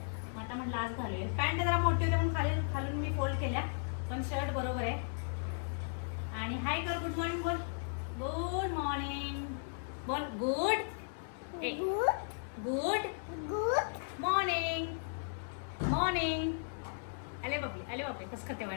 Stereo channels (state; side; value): silent; right; 54 dB below the other